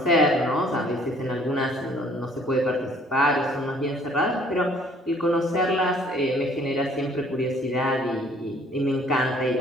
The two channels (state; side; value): normal; both; correlation 0.59